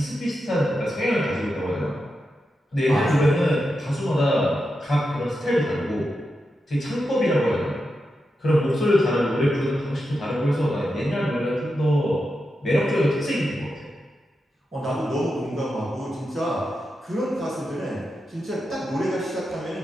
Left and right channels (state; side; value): normal; both; correlation 0.88